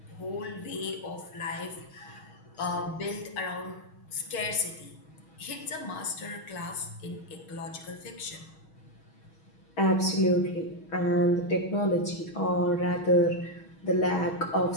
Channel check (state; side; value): late; right; 6.3 ms